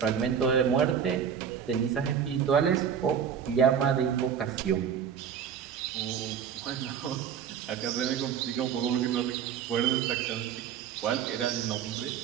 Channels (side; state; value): left; quieter; 8.0 dB